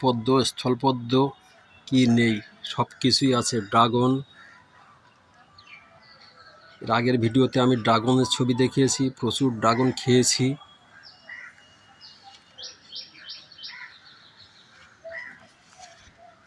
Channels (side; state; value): both; identical; correlation 1.00